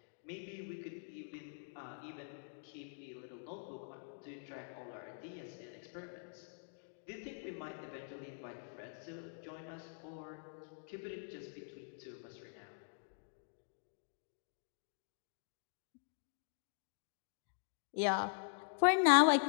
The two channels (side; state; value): right; silent; digital silence